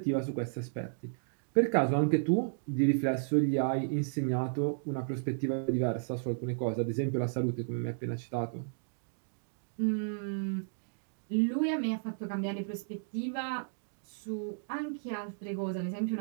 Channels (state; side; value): silent; left; digital silence